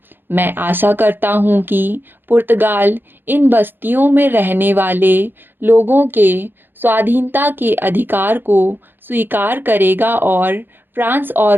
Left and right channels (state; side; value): late; left; 0.098 ms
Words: मैं आशा करता हूँ कि पुर्तगाल इन बस्तियों में रहने वाले लोगों के स्वाधीनता के अधिकार को स्वीकार करेगा और फ्रांस